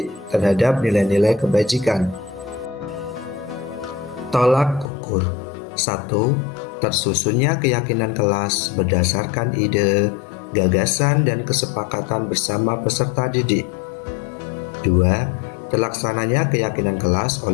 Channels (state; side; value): drops out; right; at 4.9 s